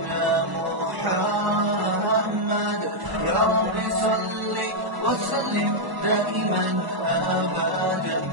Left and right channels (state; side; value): late; left; 1.0 ms